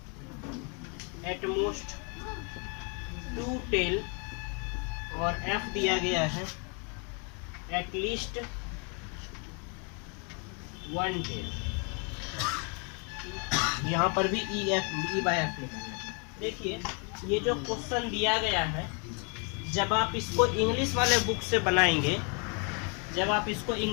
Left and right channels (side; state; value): right; quieter; 36.4 dB